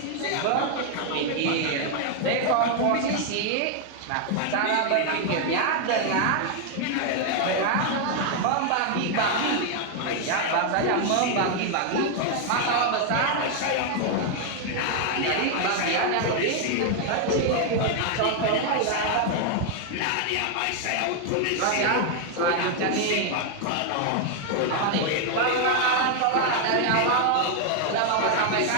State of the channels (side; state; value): both; different; correlation 0.00